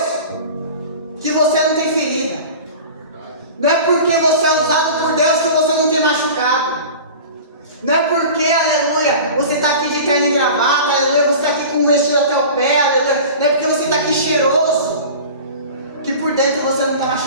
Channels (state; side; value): inverted; both; correlation -0.37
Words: que você não tem ferida. Não é porque você é usado por Deus que você não tem machucado. Não é porque, aleluia, você está aqui de terno e gravata, aleluia, você está aqui com um vestido até o pé, aleluia. Não é porque você está aqui cheiroso que por dentro você não está